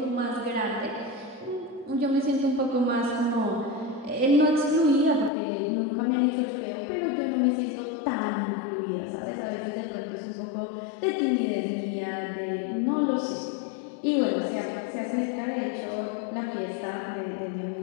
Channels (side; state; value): right; drops out; at 5.3 s